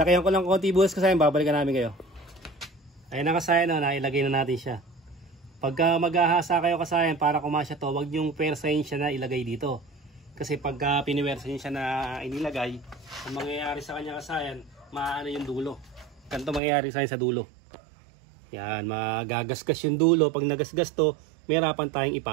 ko lang konti bukas kasayan, babalikan namin kayo. Ayun na kasayan, no, nailagay na natin siya. Pagka maghahasa kayo kasayan para kumasya to, wag yung persahin siya na ilagay dito. Kasi pagka piniwersahin siya na inilagay, ang mangyayari sa kanya kasayan, maano yung dulo. Ganito mangyayari sa dulo. Yan, magagasgas yung dulo. Pag nagasgas to, may harapan tayong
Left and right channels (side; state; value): left; drops out; at 16.6 s